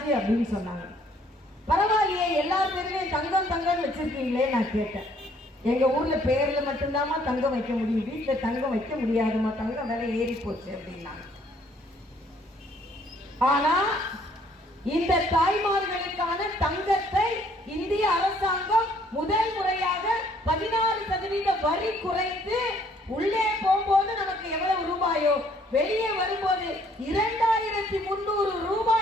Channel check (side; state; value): both; normal; correlation 0.63